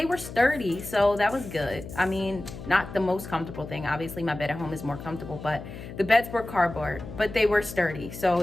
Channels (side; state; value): left; noise; hum, 12 dB below the sound